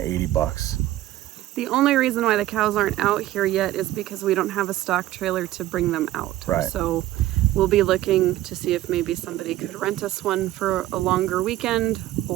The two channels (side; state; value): left; quieter; 14.9 dB